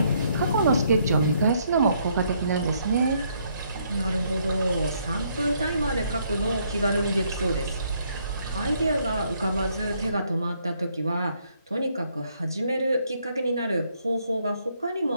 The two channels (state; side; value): inverted; both; correlation -0.70